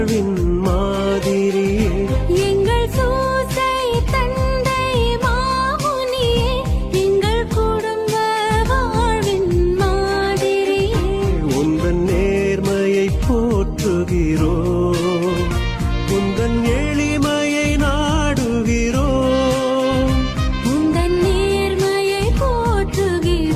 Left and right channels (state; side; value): identical; both; correlation 1.00